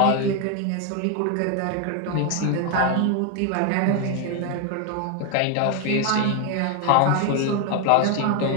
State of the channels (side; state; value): both; different; correlation 0.01